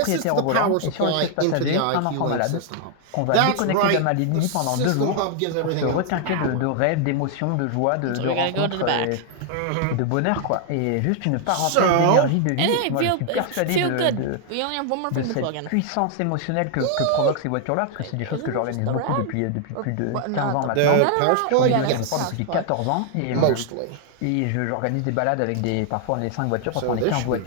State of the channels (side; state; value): both; different; correlation 0.00